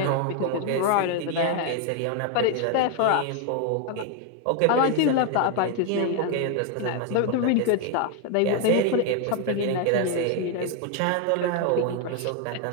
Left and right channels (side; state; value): both; different; correlation 0.01